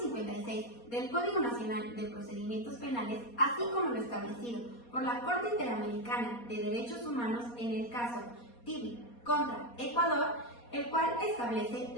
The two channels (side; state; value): right; late; 4.2 ms